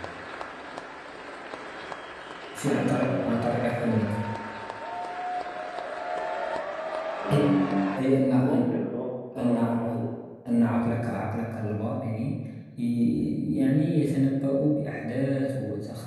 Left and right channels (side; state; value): both; identical; correlation 1.00